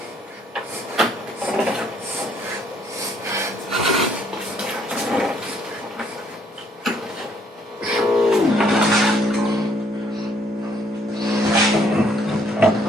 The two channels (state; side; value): normal; both; correlation 0.66